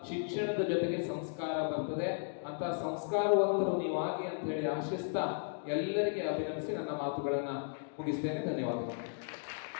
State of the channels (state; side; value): silent; right; digital silence